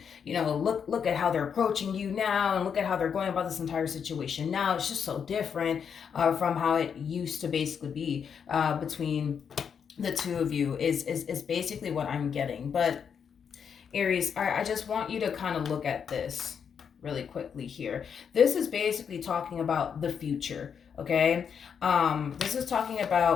look at how they're approaching you now and look at how they're going about this entire situation now. It's just so different from how it used to basically be between the two of you is basically what I'm getting. But Aries, I just want you to kind of look at this really quickly here. This is basically talking about the future, okay? This is talking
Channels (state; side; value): quieter; right; 7.1 dB